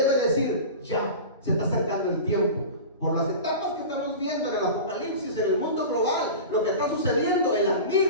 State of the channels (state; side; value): inverted; both; correlation -0.32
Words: decir: ya, se está acercando el tiempo. Por las etapas que estamos viendo en el apocalipsis, en el mundo global, lo que está sucediendo, el